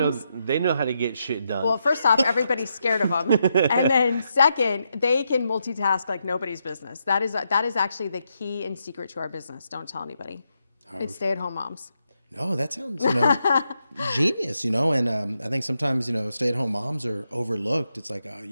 They know how to get shit done. Well, first off, everybody's scared of them, and then second, they can multitask like nobody's business. That is actually the key and secret to our business. Don't tell anybody. It's stay-at-home moms. No, that sounds, genius, and I think sometimes, stay-at-home moms are overlooked. It's like, oh,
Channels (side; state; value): both; inverted; correlation -0.82